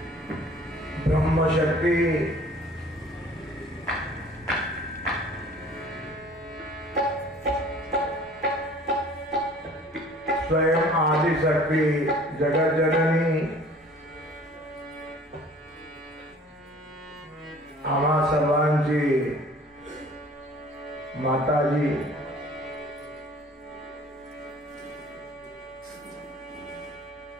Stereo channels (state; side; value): normal; both; correlation 0.50